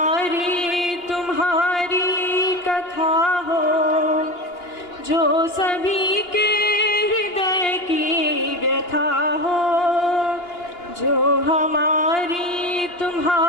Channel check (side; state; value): right; late; 2.8 ms